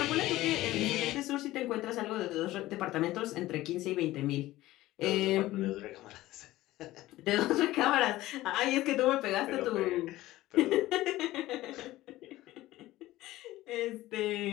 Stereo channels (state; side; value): quieter; right; 16.6 dB